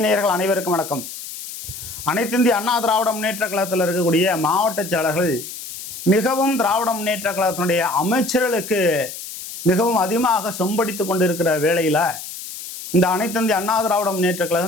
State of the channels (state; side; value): noise; left; hiss, 11 dB below the sound